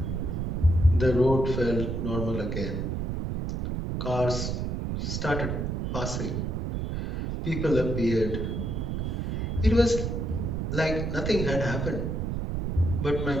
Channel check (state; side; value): noise; right; rumble, 2 dB below the sound